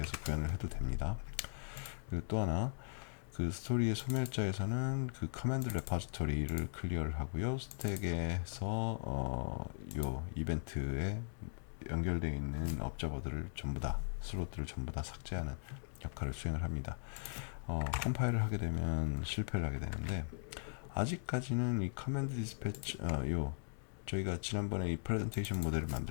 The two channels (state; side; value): silent; right; digital silence